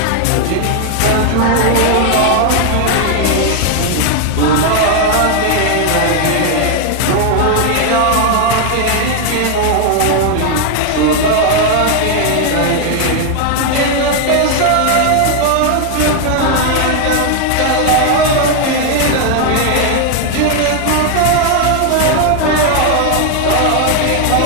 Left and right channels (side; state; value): both; different; correlation 0.01